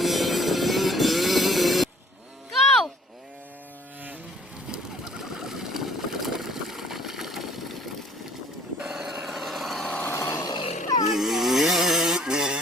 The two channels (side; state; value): both; normal; correlation 0.55